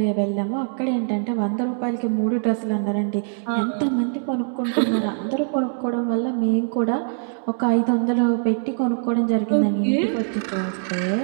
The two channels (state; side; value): silent; left; digital silence